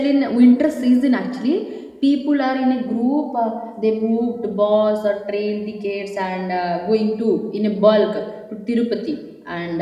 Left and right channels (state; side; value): identical; both; correlation 1.00